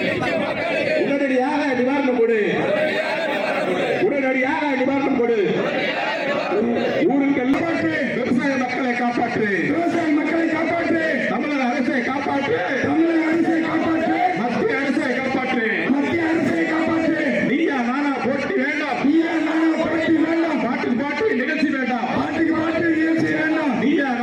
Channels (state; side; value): identical; both; correlation 1.00